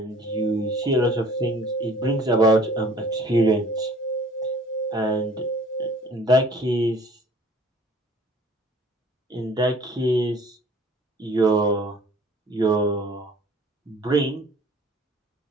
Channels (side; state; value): both; normal; correlation 0.52